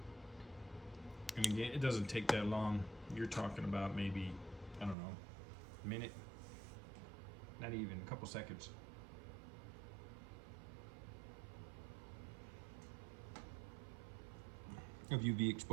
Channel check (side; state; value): left; drops out; at 5.0 s